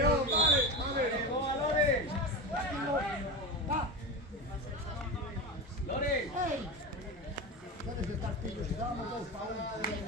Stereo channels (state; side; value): normal; both; correlation 0.22